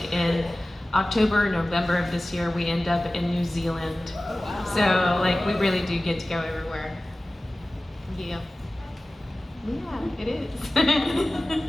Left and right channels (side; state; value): both; normal; correlation 0.96